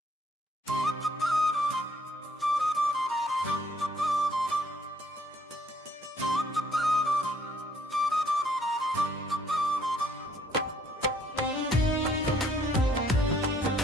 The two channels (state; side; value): normal; both; correlation 0.64